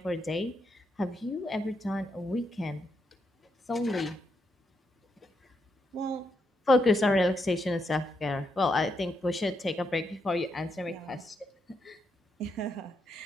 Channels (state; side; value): normal; both; correlation 0.80